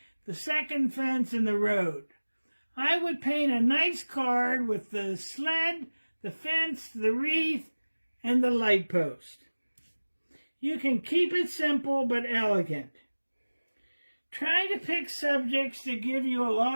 the second fence, and the road. I would paint a nice card with the sled, the fence, the wreath, and the light post. You can keep it simple but elegant. Try to pick subjects that give you a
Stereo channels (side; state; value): both; inverted; correlation -1.00